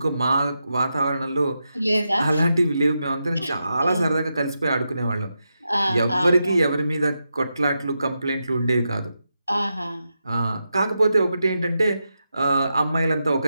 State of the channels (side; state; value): both; inverted; correlation -0.87